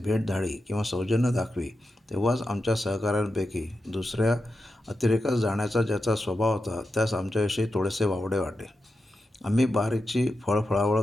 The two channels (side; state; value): both; normal; correlation 0.89